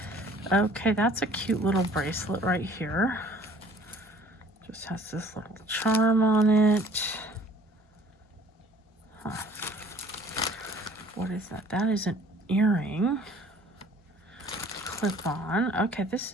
Okay, that's a cute little bracelet right here. Just has this little charm on it. What is that? That is an earring. Clip on. Okay, this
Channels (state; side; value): normal; both; correlation 0.53